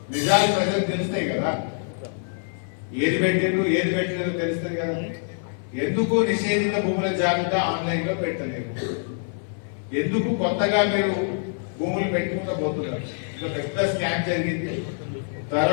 నిజాలు ప్రజలకు తెలుస్తాయి కదా, ఏది పెట్టిండ్రు ఏది పెట్టలేదో తెలుస్తుంది కదా. ఎందుకు నిషేధిత భూముల జాబితా ఆన్లైన్ లో పెట్టలేదు? ఎందుకు కొత్తగా మీరు భూములు పెట్టుకుంటూ పోతున్నారు? ఇంకా పెద్ద స్కామ్ జరిగింది.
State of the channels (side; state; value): right; silent; 56 dB below the other